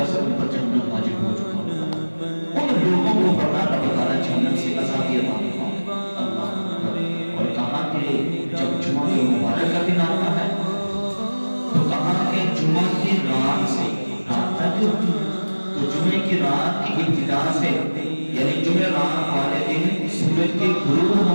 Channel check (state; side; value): inverted; both; correlation -1.00